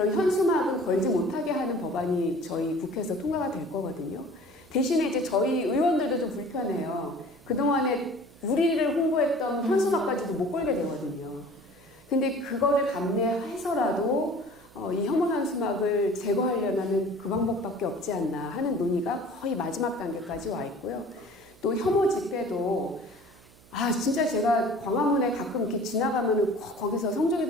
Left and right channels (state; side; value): noise; right; hum, 26 dB below the sound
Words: 현수막은 걸지 못하게 하는 법안이 저희 국회에서 통과가 될 거거든요. 대신에 이제 저희 의원들도 좀 불편해요. 그동안에 우리를 홍보했던 현수막까지도 못 걸게 되거든요. 근데 그거를 감내해서라도 이 혐오 현수막을 제거하려면 그 방법밖에 없지 않나 하는 논의가 거의 마지막 단계까지 와 있고요. 또 혐오 집회도 진짜 제가 광화문에 가끔 이렇게 지나가면은 거기서 성조기